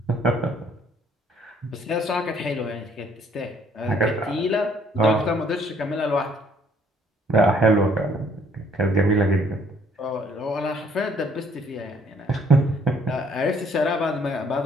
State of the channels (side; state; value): both; normal; correlation 0.62